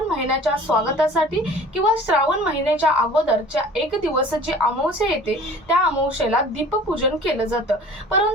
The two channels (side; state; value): both; normal; correlation 0.46